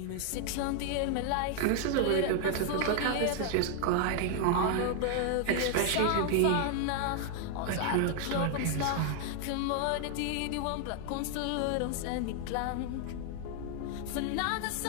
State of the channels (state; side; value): different; both; correlation 0.00